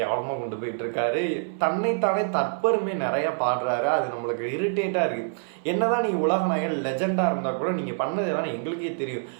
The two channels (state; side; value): silent; left; 58 dB below the other